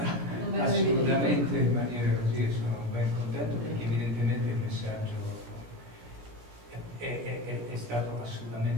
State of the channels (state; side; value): late; left; 16 ms